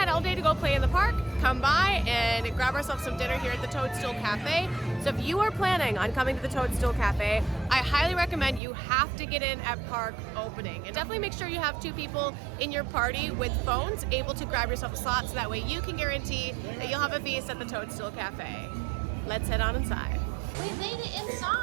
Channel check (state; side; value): drops out; left; at 8.6 s